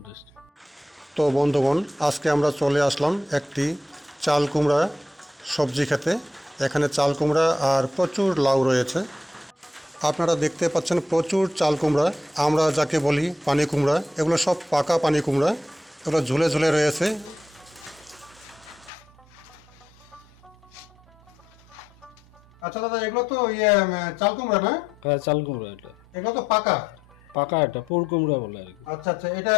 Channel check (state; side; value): normal; both; correlation 0.80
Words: টেস্টি। তো বন্ধুগণ, আজকে আমরা চলে আসলাম একটি চাল কুমড়া সবজি খেতে। এখানে চাল কুমড়া আর প্রচুর লাউ রয়েছে। আপনারা দেখতে পাচ্ছেন প্রচুর চাল কুমড়া, আমরা যাকে বলি পানি কুমড়া। এগুলো সব পাকা পানি কুমড়া, এগুলো ঝুলে ঝুলে রয়েছে। আচ্ছা দাদা, এগুলো তো চাল কুমড়া না? হ্যাঁ, চাল কুমড়া এটা। এগুলো তো পাকা। পাকা, এটা পুর কুমড়া বলে আর কি। আচ্ছা আচ্ছা, এটা